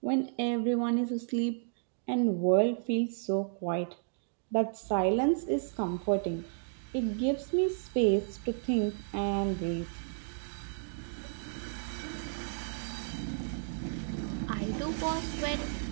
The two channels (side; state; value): left; silent; digital silence